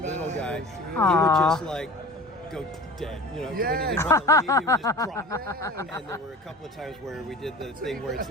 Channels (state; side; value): normal; both; correlation 0.39